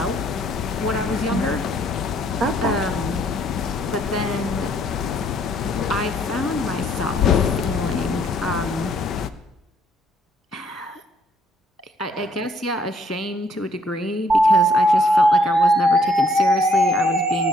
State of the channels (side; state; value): both; normal; correlation 0.66